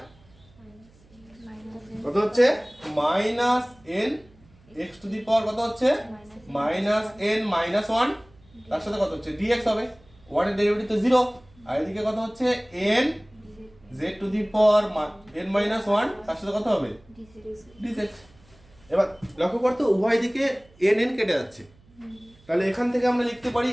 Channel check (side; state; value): right; noise; hum, 28 dB below the sound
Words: কত হচ্ছে -n x⁴ কত হচ্ছে -n - 1, তার সাথে কত হচ্ছে dx হবে, 1 এর ডেরিভেটিভ তো 0, আর এদিকে কত হচ্ছে n z⁴n - 1, তার সাথে কত হবে dz। এবার লক্ষ্য করতে উভয় দিকে n কেটে যাচ্ছে, তাহলে এখান থেকে আমরা লিখতে পারি